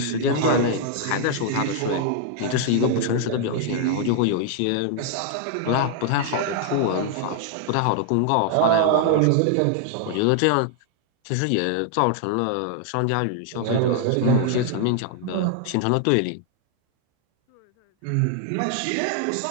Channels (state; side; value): different; both; correlation 0.00